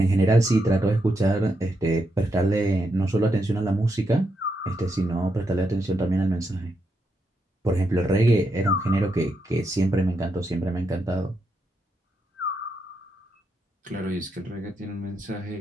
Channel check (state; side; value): normal; both; correlation 0.82